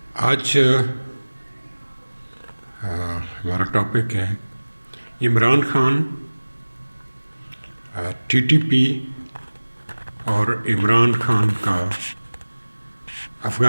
آج ہمارا ٹاپک ہے Imran Khan, T T P اور عمران خان کا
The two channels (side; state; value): both; inverted; correlation -1.00